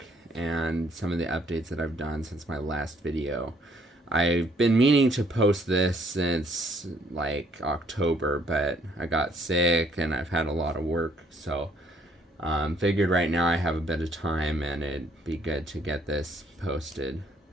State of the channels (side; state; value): both; normal; correlation 0.65